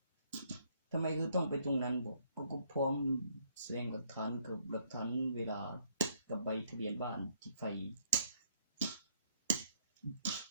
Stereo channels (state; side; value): inverted; both; correlation -0.68